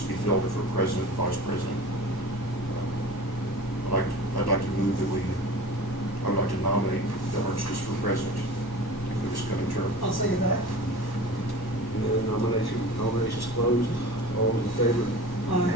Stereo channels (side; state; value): right; late; 1.1 ms